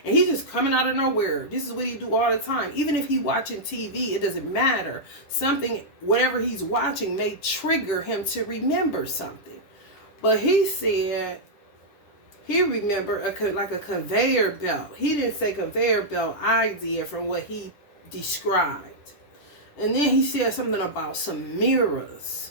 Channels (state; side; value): late; right; 10 ms